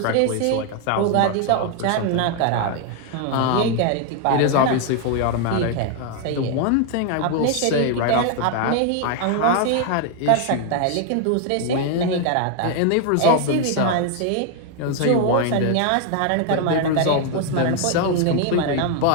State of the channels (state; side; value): different; both; correlation 0.00